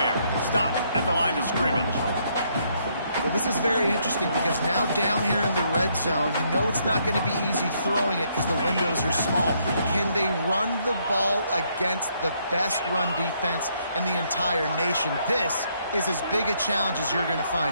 Stop at the line of scrimmage. Well, this is very interesting because now down here in the red zone, you know it's not going to be easy throwing it because the windows are small. Can they run the ball against the best run defense in the entire nation? This is as big a challenge as you're going to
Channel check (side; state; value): both; inverted; correlation -0.72